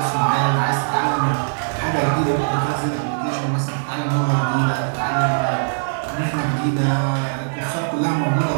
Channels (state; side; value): silent; left; digital silence